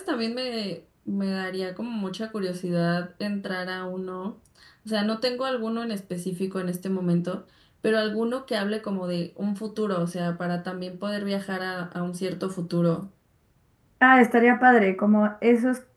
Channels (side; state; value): both; identical; correlation 1.00